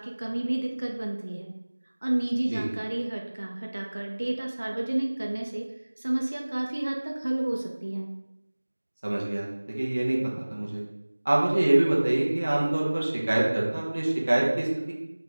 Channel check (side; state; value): both; inverted; correlation -1.00